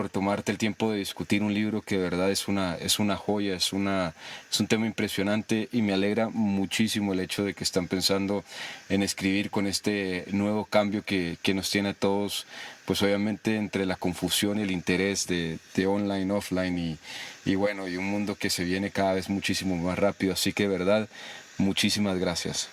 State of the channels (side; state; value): both; identical; correlation 1.00